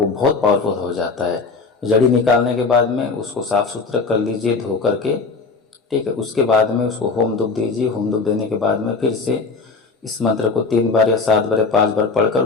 बहुत पावरफुल हो जाता है। जड़ी निकालने के बाद में उसको साफ सुथरा कर लीजिए, धो करके, ठीक है। उसके बाद में उसको होम धूप दीजिए। होम धूप देने के बाद में फिर से इस मंत्र को 3 बार या 7 बार या 5 बार पढ़कर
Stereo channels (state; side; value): quieter; right; 4.4 dB